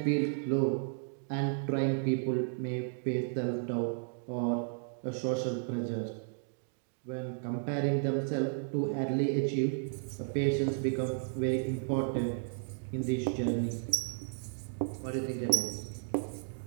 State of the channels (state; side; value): silent; left; digital silence